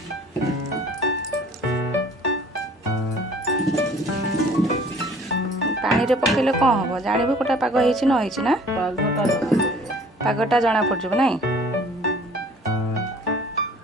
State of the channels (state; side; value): normal; both; correlation 0.52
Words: पानी रे पकेले कौन हम जानबू कोटा पाग होइछि न होइछि ना पागटा जना पड़जो नहीं